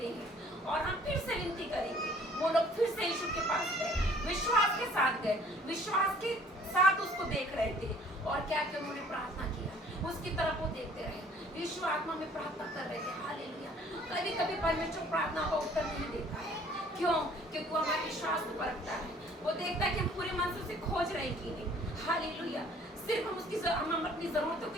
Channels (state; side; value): normal; both; correlation 0.55